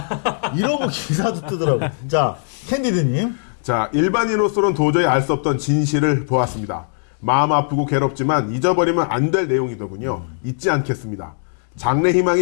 이러고 기사도 뜨더라고요. 자, 캔디드님. 자, 일반인으로서는 도저히 알 수 없던 진실을 보았습니다. 마음 아프고 괴롭지만 잊어버리면 안 될 내용이더군요. 잊지 않겠습니다.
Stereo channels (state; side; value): silent; right; digital silence